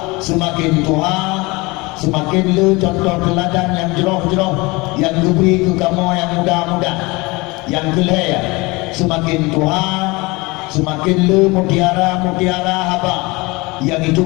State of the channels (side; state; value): right; quieter; 24.2 dB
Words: semakin Tuhan semakin le contoh teladan yang jeroh-jeroh yang diberi ke kamu yang muda-muda. Yang kelaya, semakin Tuhan semakin le mutiara-mutiara haba yang